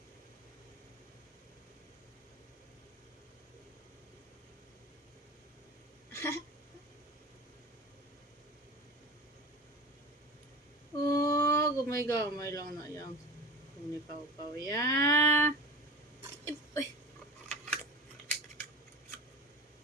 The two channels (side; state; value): both; normal; correlation 0.32